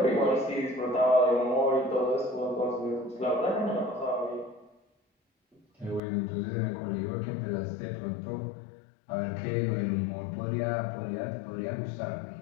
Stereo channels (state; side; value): drops out; right; at 6.0 s